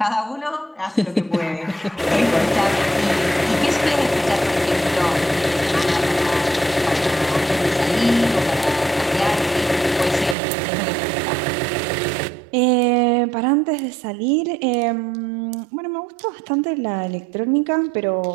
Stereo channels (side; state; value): left; drops out; at 10.4 s